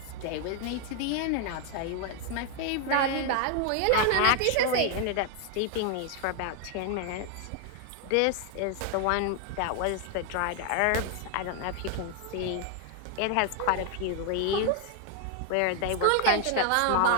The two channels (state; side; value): different; both; correlation 0.00